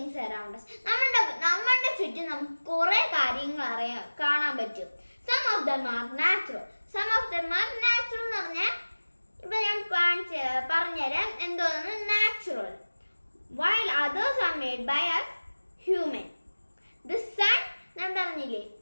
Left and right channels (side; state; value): both; inverted; correlation -1.00